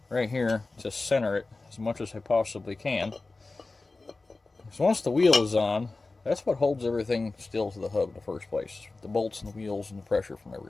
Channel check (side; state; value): right; quieter; 3.5 dB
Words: right here to center it as much as I possibly can. So once the wheel is on, that's what holds everything still to the hub in the first place. The bolts and the wheels and the pressure from